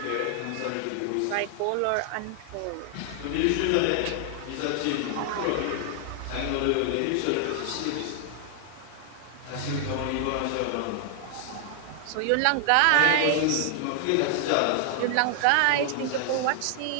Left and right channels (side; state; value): both; different; correlation 0.00